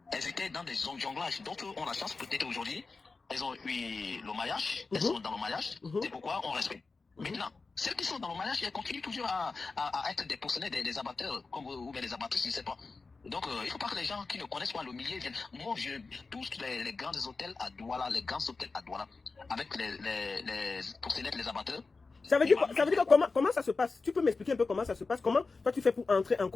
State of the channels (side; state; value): right; quieter; 4.1 dB